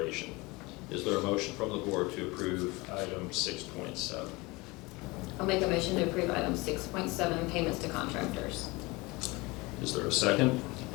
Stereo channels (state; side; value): quieter; right; 23.7 dB